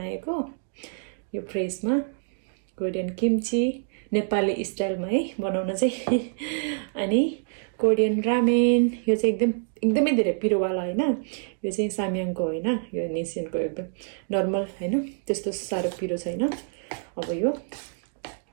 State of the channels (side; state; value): left; silent; digital silence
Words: यो फ्रेशमा कोरियन किम्ची नेपाली स्टाइलमा है बनाउन चाहिँ अनि कोरियन रामेन यो चाहिँ एकदमै धेरै पिरोवाला हैन यो चाहिँ साम्याङको हैन यो निसिनको एकदम नर्मल हैन त्यस्तो साह्रो पिरो छैन अब यो